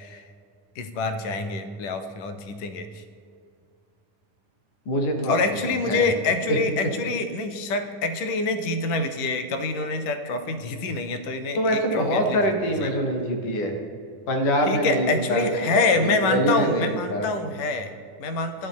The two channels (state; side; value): late; right; 10 ms